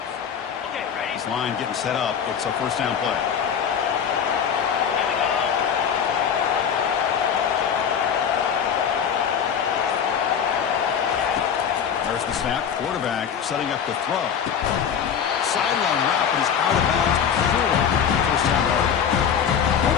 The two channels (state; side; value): quieter; right; 7.8 dB